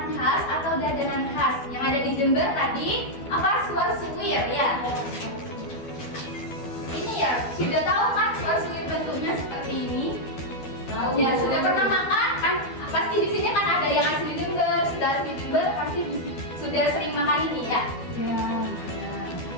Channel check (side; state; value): right; late; 12 ms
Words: khas atau jajanan khas yang ada di Jember tadi apa? Suar-suwir ya. Ini ya sudah tahu kan suar-suwir bentuknya seperti ini? Tahu. Ya sudah pernah makan kan? Pasti di sini kan ada yang asli Jember, sudah asli Jember pasti sudah sering makan ini ya.